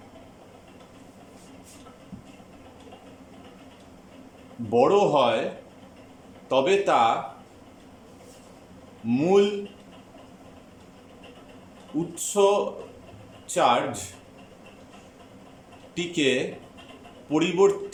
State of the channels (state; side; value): identical; both; correlation 1.00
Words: বড় হয় তবে তা মূল উৎস চার্জটিকে